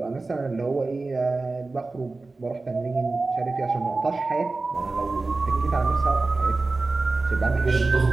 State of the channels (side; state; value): left; quieter; 3.5 dB